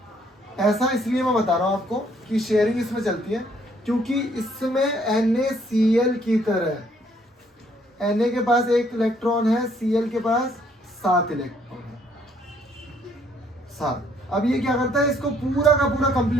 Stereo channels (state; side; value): normal; both; correlation 0.66